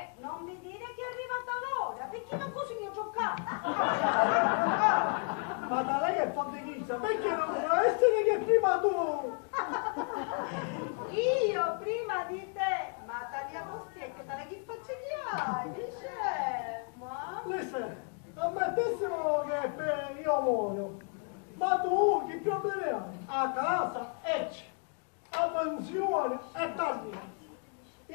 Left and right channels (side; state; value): right; quieter; 39.8 dB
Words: non mi dire che è arrivata l'ora, perché non così mi ho giocato. Ma da lei è fondichista, perché non può essere che prima tu? Io prima di te, ma tagliato specchio, dalle che facce che hai? Dice, ma... Listen, ammettessimo che io muoio, ma tu che problemi hai? A casa a pensione e tagliato.